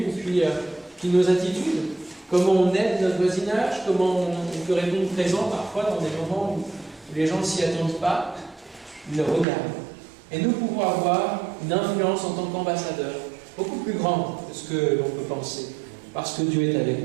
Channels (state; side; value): drops out; left; at 9.5 s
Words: puis nos attitudes, comment on aide notre voisinage, comment on peut répondre présent parfois dans des moments où les gens ne s'y attendent pas. Ils le regardent. Et nous pouvons avoir une influence en tant qu'ambassadeurs beaucoup plus grande que ce que l'on peut penser, parce que Dieu est avec